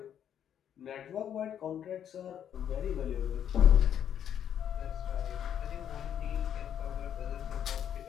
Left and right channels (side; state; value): right; quieter; 9.4 dB